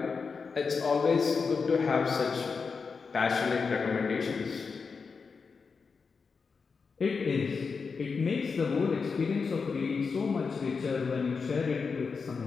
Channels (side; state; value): right; quieter; 5.1 dB